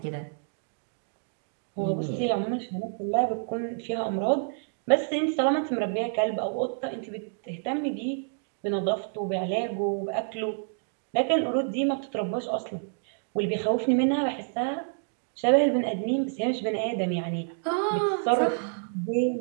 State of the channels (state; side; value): silent; left; digital silence